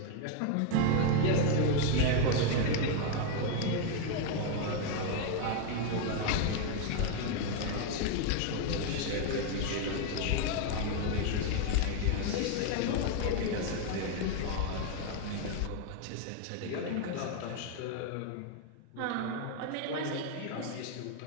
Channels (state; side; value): different; both; correlation 0.01